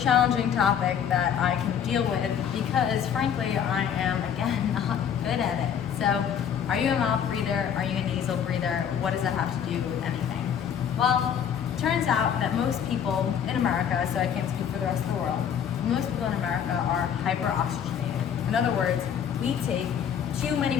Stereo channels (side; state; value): right; quieter; 8.3 dB